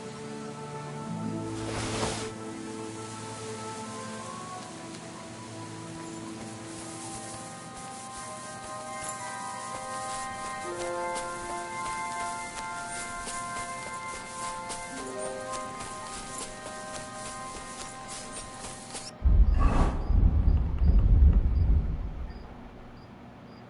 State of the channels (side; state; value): both; identical; correlation 1.00